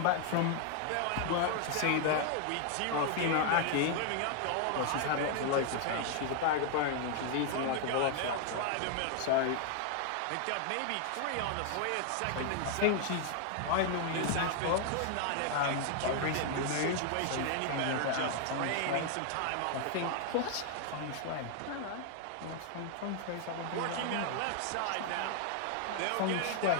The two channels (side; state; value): both; different; correlation 0.00